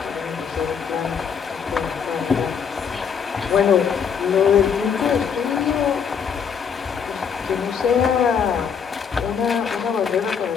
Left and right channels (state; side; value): quieter; right; 6.9 dB